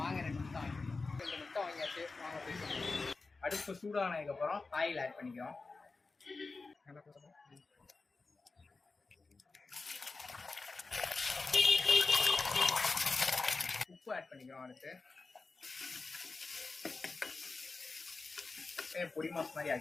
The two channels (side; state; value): right; quieter; 3.9 dB